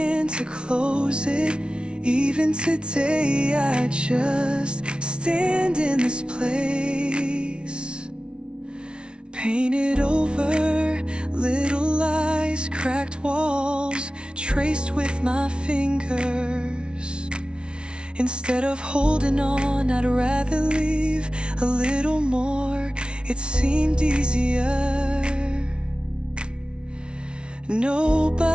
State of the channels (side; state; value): left; late; 0.057 ms